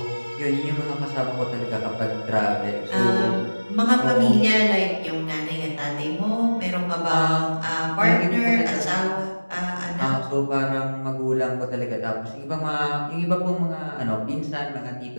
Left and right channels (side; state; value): both; inverted; correlation -1.00